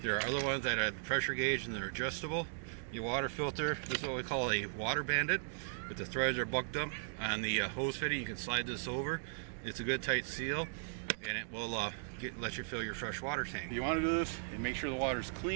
There are other ones that have the pressure gauge and they're adjustable. Your water filter, this is what we call a water bandit. If the threads are bucked up on the hose fitting, you can slide this over. It's a good tight seal, and it will let you fill your fresh water tank. You want to do this and make sure the water is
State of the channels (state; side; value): silent; left; digital silence